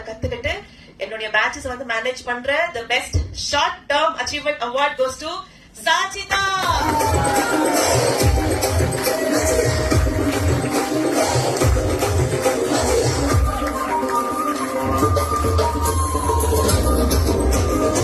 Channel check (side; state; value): both; identical; correlation 1.00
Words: கத்துக்கிட்டு என்னுடைய பேட்சஸ் வந்து மேனேஜ் பண்ற the best short term achievement award goes to Sachita.